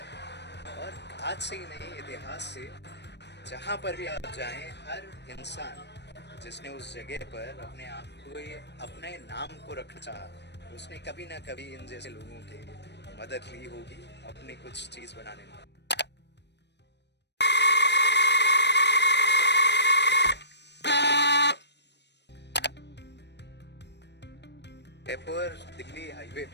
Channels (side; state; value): right; late; 0.50 ms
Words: और आज से ही नहीं, इतिहास से जहाँ पर भी आप जाएं, हर इंसान जिसने उस जगह पर अपने आप को, ये अपने नाम को रखना चाहा, उसने कभी ना कभी इन जैसे लोगों की मदद ली होगी अपनी कुछ चीज़ बनाने में। जयपुर दिल्ली हाईवे